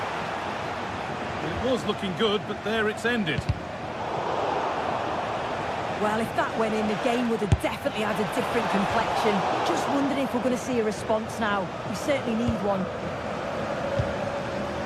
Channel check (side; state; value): both; identical; correlation 1.00